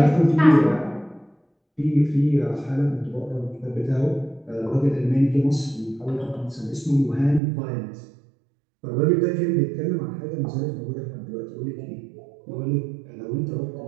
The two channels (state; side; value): drops out; left; at 7.4 s